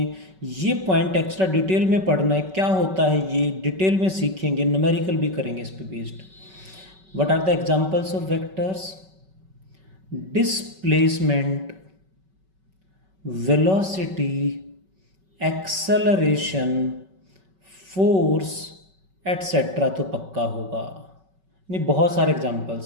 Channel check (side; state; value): left; late; 5.3 ms